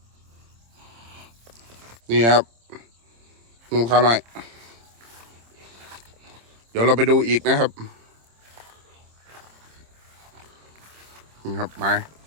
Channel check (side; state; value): left; late; 26 ms